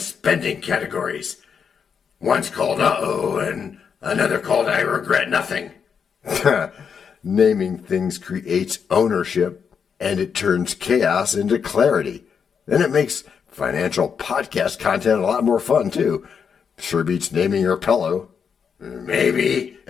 categories. One's called Uh-oh and another called I Regret Nothing. Naming things creates ownership and it turns chaos into clarity. Then it makes financial podcast content a lot more fun too. Sure beats naming your pillow. Maybe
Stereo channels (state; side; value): quieter; right; 6.7 dB